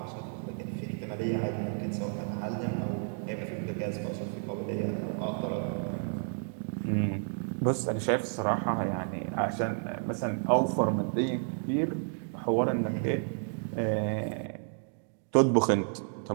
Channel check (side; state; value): left; silent; 57 dB below the other